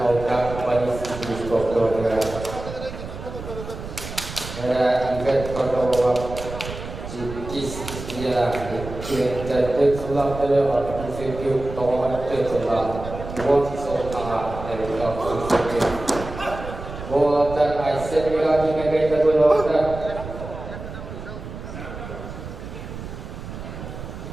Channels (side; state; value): right; noise; rumble, 10 dB below the sound